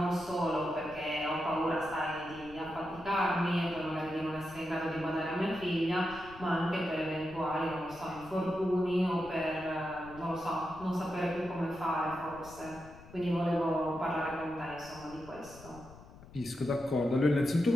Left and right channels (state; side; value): noise; left; rumble, 19 dB below the sound